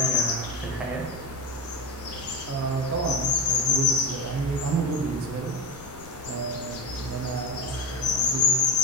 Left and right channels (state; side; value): noise; left; rumble, 18 dB below the sound